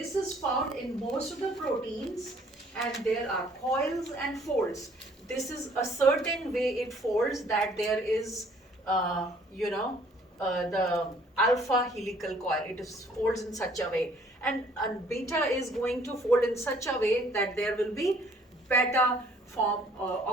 is found in most of the proteins, and there are coils and folds. This is a certain way it folds, that there is the alpha helical coil. It folds in such a way, and beta is going to fold in such a way that there will be beta form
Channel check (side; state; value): both; normal; correlation 0.59